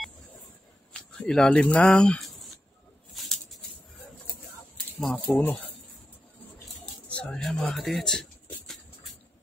ilalim ng mga puno. So ayan mga ka-TH.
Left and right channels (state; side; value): normal; both; correlation 0.89